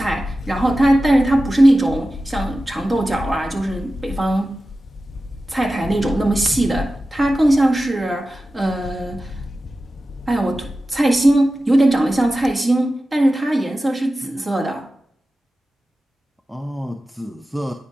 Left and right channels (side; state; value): both; normal; correlation 0.94